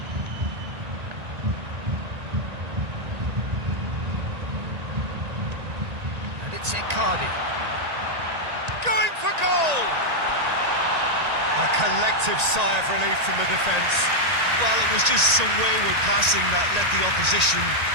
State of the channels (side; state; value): left; late; 1.9 ms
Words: And it's Icardi. Going for goal! A collective sigh of relief from the defence. Well, it was just some wayward passing that let the opposition